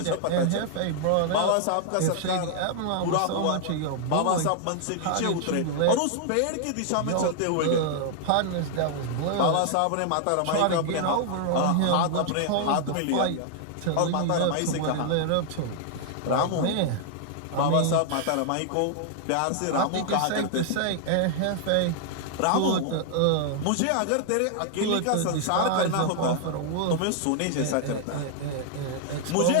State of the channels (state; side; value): different; both; correlation -0.01